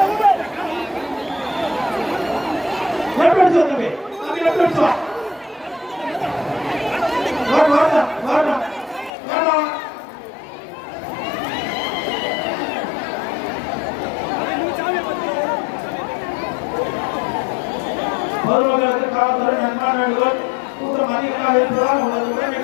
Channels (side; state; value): right; drops out; at 9.1 s